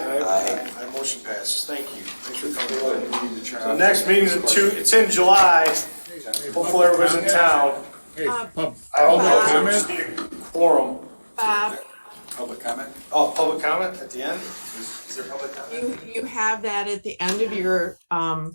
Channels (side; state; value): both; inverted; correlation -1.00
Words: Aye, motion passes. Thank you. Thanks for coming. We need to turn The off- next meeting's it's in July. Hopefully everybody's in town. Hey, I don't know, we just need a quorum. Bob, public comment? Oh, public comment at the end? Is there public comment? you have that at the end of your,